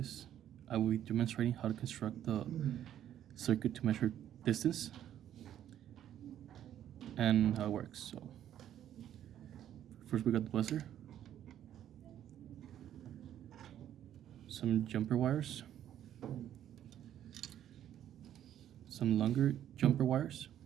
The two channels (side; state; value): left; quieter; 11.0 dB